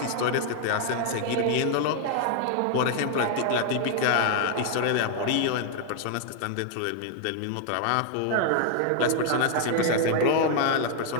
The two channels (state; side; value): different; both; correlation 0.00